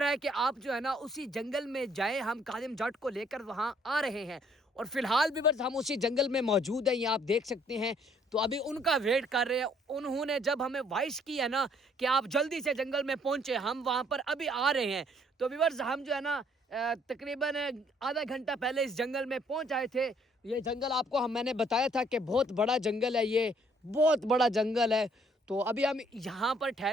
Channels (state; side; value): normal; both; correlation 0.64